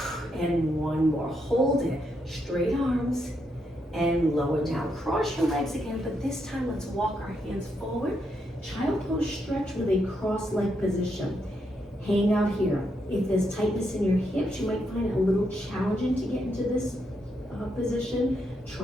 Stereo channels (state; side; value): normal; both; correlation 0.80